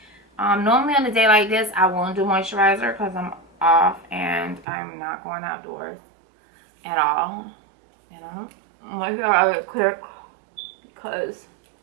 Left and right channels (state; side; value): drops out; left; at 4.7 s